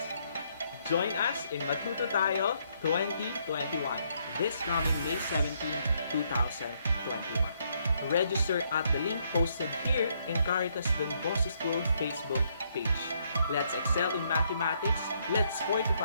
Join us in Matuto Tayo 2021 this coming May 17, 2021. Register at the link posted here in Caritas Don Bosco School Facebook page. Let's excel in mathematics. Let's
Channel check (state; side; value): inverted; both; correlation -0.72